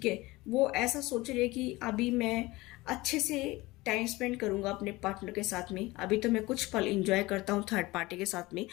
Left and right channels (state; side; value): quieter; right; 20.6 dB